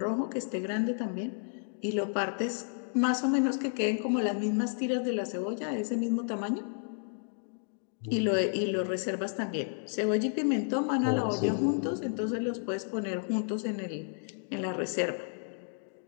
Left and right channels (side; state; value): right; silent; 57 dB below the other